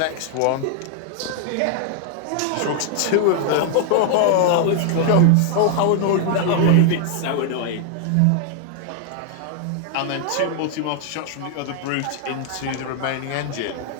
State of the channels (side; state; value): both; different; correlation 0.00